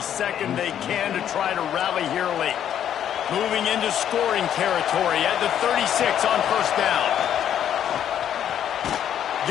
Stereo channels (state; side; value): quieter; right; 9.9 dB